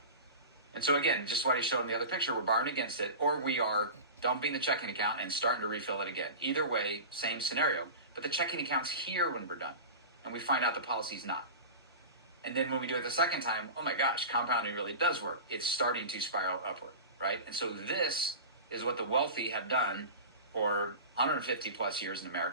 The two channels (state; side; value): inverted; both; correlation -0.31